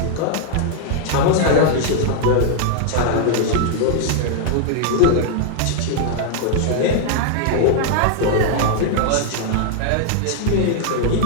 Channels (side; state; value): both; different; correlation 0.00